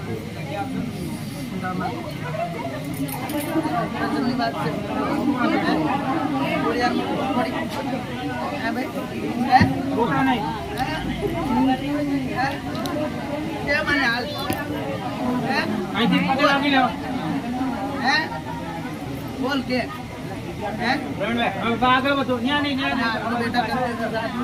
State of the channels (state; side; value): identical; both; correlation 1.00